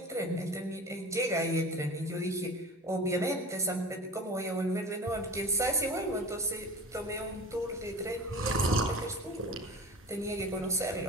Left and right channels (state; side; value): normal; both; correlation 0.36